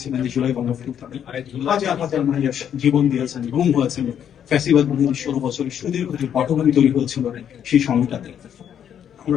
এই জুলাই গণঅভ্যুত্থানে। হাজার হাজার মানুষ জীবন দিয়েছেন, গুম হয়েছেন ফ্যাসিবাদ বিরোধী 16 বছরের সুদীর্ঘ যে পটভূমি তৈরি হয়েছিল সেই সময়টাতে।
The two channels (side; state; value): right; quieter; 9.1 dB